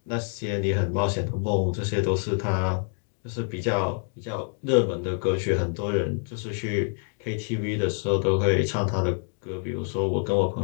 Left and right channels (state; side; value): silent; right; 55 dB below the other